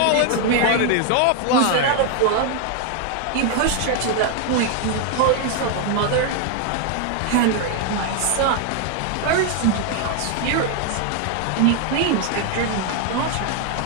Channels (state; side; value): different; both; correlation 0.00